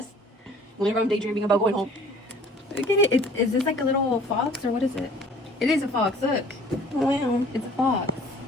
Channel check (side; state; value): both; normal; correlation 0.52